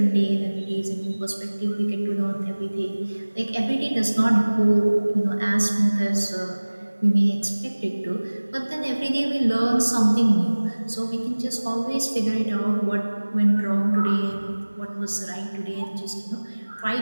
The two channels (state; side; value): inverted; both; correlation -1.00